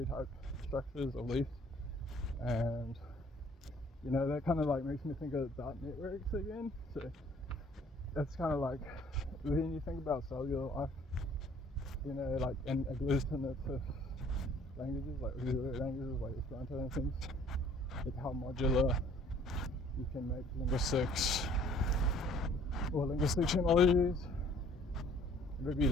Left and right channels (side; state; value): both; normal; correlation 0.57